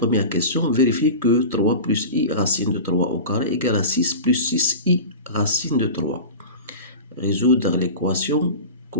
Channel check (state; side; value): inverted; both; correlation -0.31